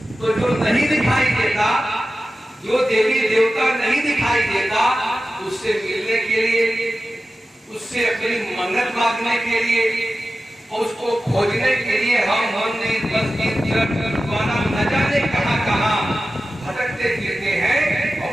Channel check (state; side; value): normal; both; correlation 0.94